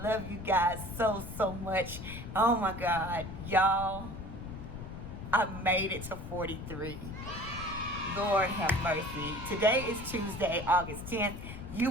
love you guys so much. Oh my God, y'all, I made it to 43. Lord have mercy. Today is Tuesday, August 10th. You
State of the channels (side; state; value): left; noise; rumble, 9 dB below the sound